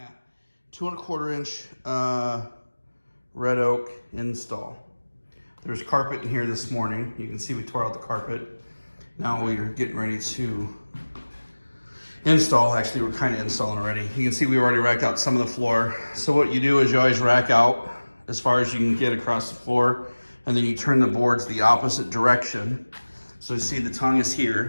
2¼ inch red oak install. There's carpet in here this morning. You can see we tore out the carpet. Now we're getting ready to install. Actually, we're kind of installing already. You can see we already racked out some of the floor. So what you do is you always rack out as far as you can get across the floor, and then you turn the boards the opposite direction. So you see the tongue is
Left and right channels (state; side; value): inverted; both; correlation -1.00